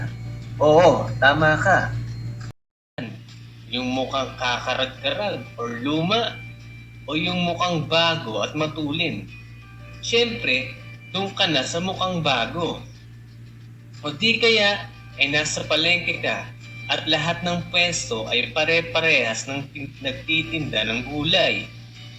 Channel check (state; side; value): identical; both; correlation 1.00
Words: Oo, tama ka. Yung mukhang kakarag-karag or luma o yung mukhang bago at matulin? Siyempre, doon ka na sa mukhang bago. O di kaya ay nasa palengke ka at lahat ng pwesto ay pare-parehas ng nagtitinda ng gulay.